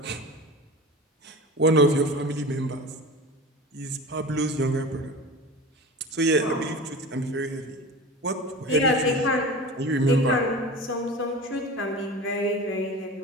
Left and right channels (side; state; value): both; normal; correlation 0.33